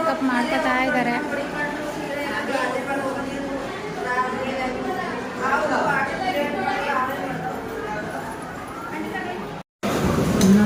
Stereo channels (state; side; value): identical; both; correlation 1.00